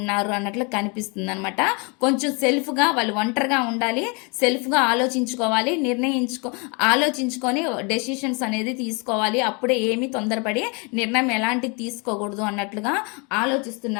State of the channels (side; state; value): right; quieter; 32.0 dB